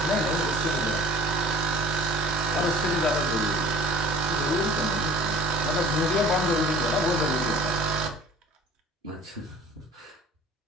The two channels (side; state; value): both; normal; correlation 0.48